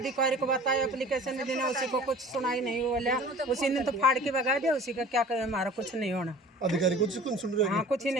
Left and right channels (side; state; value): both; normal; correlation 0.44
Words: को बताया, एप्लीकेशन देना, उसी को कुछ सुनाई नहीं बोला। उसी ने तो फाड़ के भगा दिया। उसी का क्या करे, हमारा कुछ नहीं होना। अधिकारी कुछ सुन रहे? हाँ कुछ ही